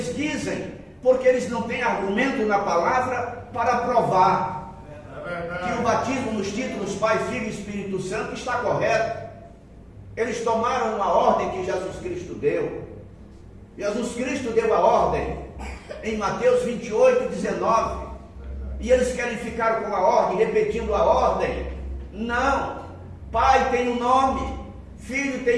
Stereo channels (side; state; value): both; identical; correlation 1.00